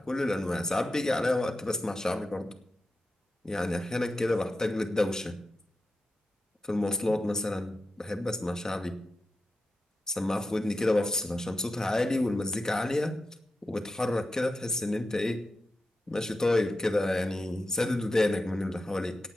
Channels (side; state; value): both; normal; correlation 0.90